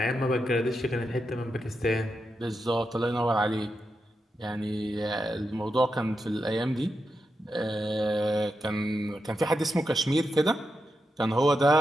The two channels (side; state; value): both; normal; correlation 0.86